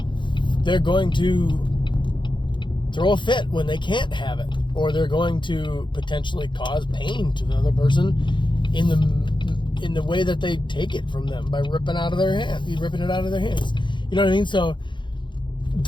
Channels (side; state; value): right; late; 0.23 ms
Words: They're going to throw a fit when they can't have it, or they're going to potentially cause pain to the other person in the way that they take it from them by ripping it out of their hands. You know what I mean? So